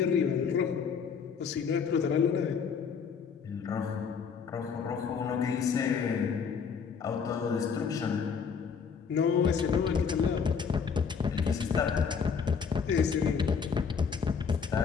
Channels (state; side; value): quieter; right; 6.3 dB